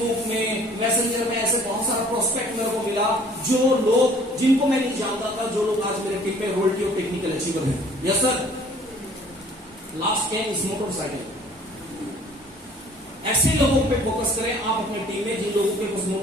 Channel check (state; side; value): normal; both; correlation 0.54